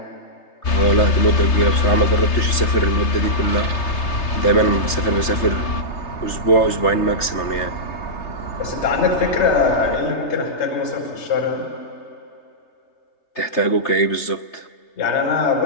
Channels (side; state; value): right; late; 3.3 ms